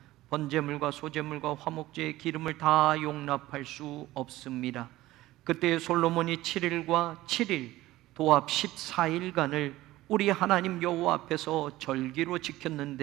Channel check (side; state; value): left; quieter; 16.8 dB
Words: 번제물과 소제물과 화목제의 기름을 다 용납할 수 없습니다. 그때 솔로몬이 7일과 7일 도합 14일간을 우리 하나님 여호와 앞에서 절기로